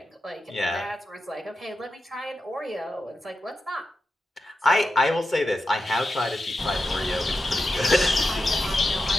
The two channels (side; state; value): both; normal; correlation 0.90